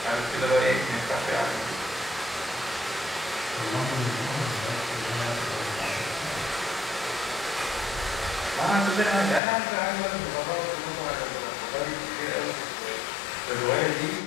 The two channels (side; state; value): right; drops out; at 9.4 s